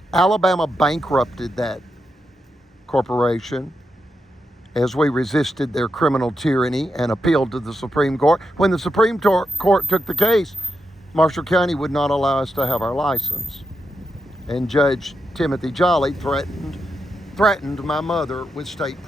Alabama bankrupted that corporation as we resisted their criminal tyranny and appealed to the Supreme Court. When the Supreme Court took the case, Marshall County would not allow us to have our license. And Judge Timothy Jolly threatened my mother with state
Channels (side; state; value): both; normal; correlation 0.85